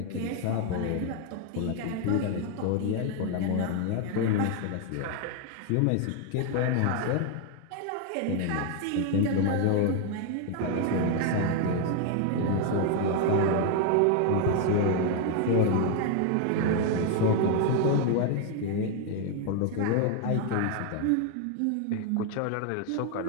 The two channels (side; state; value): both; different; correlation 0.01